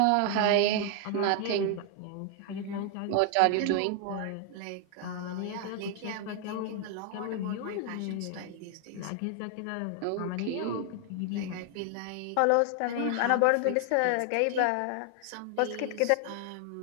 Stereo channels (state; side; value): different; both; correlation 0.00